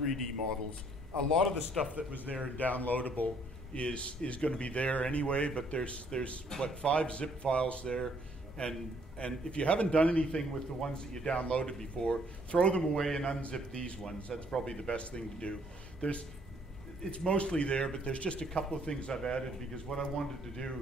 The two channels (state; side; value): normal; both; correlation 0.65